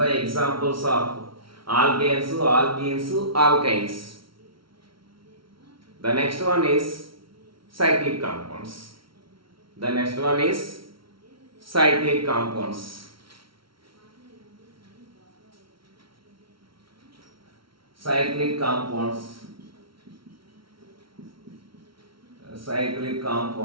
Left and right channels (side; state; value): left; late; 0.74 ms